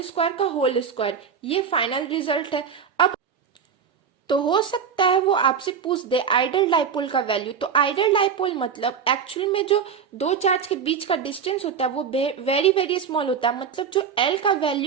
square का होल स्क्वायर। ये फाइनल रिजल्ट है। अब तो हो सकता है वो आपसे पूछ दे आइडल डाइपोल का वैल्यू। तो आइडल डाइपोल मतलब एक्चुअल में जो दो चार्ज के बीच का डिस्टेंस होता है वो वेरी वेरी स्मॉल होता है, मतलब जो L का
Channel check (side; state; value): left; quieter; 6.8 dB